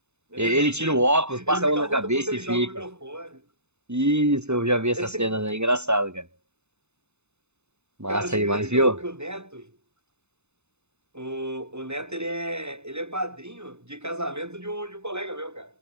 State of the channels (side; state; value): left; late; 0.81 ms